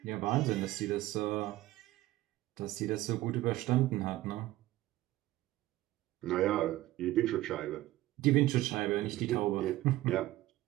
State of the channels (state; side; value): quieter; left; 16.4 dB